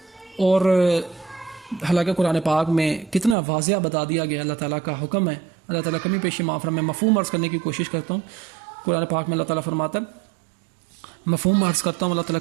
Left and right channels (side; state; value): left; drops out; at 3.4 s